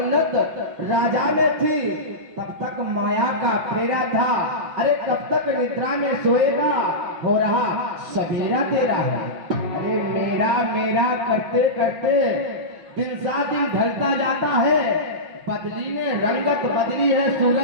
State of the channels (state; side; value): late; left; 5.8 ms